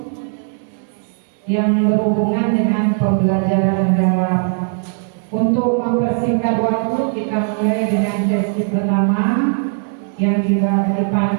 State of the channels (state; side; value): silent; left; 64 dB below the other